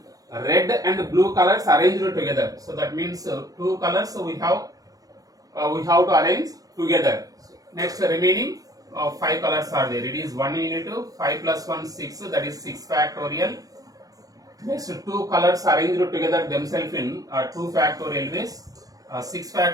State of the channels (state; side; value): late; left; 0.18 ms